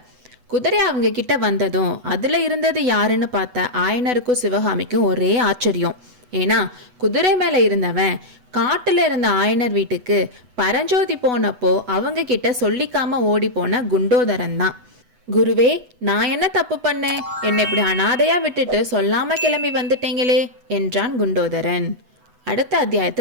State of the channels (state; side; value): late; left; 8.1 ms